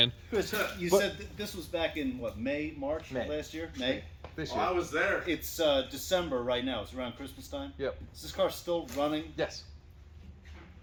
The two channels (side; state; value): both; identical; correlation 1.00